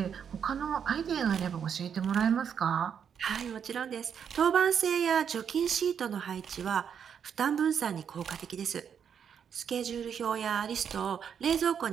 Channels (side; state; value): left; quieter; 7.7 dB